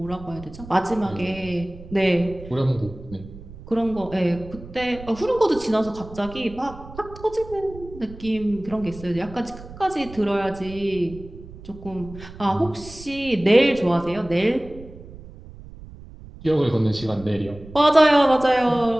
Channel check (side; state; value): right; noise; rumble, 16 dB below the sound